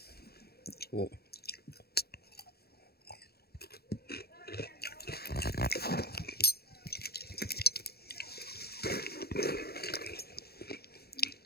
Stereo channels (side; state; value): right; late; 0.46 ms